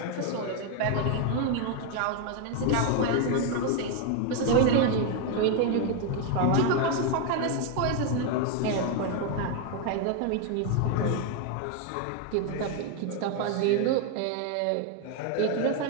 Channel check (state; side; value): different; both; correlation 0.01